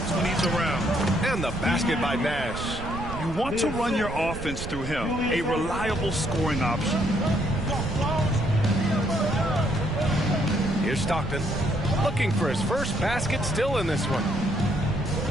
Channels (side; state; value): right; noise; rumble, 8 dB below the sound